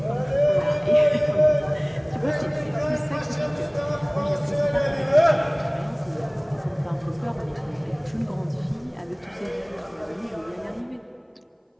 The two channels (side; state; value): both; identical; correlation 1.00